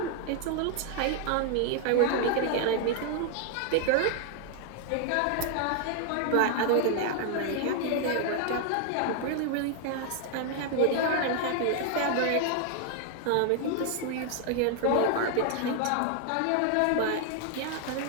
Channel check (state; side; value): different; both; correlation 0.00